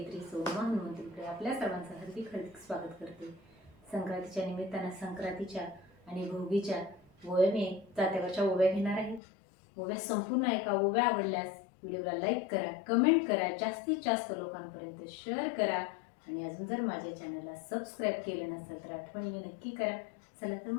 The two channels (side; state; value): right; drops out; at 9.2 s